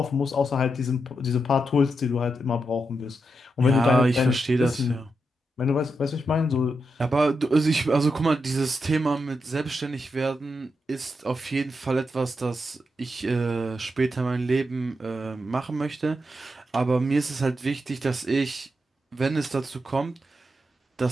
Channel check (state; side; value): normal; both; correlation 0.85